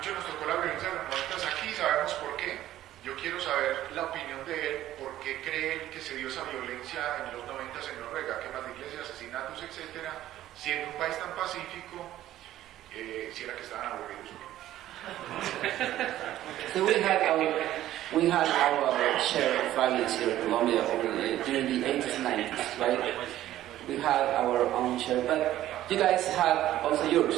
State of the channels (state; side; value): quieter; left; 13.6 dB